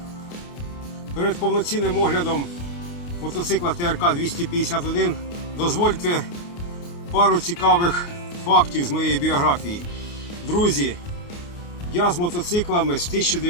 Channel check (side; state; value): right; late; 29 ms